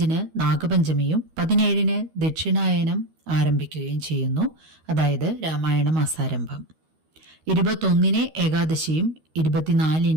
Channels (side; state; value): left; late; 13 ms